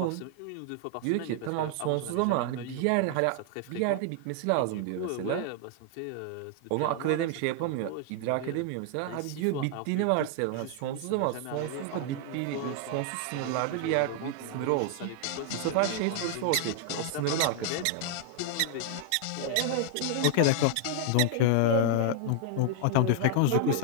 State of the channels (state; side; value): different; both; correlation 0.00